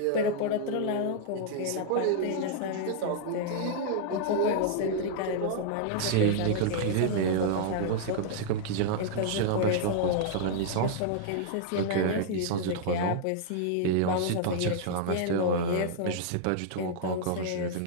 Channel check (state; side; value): different; both; correlation -0.01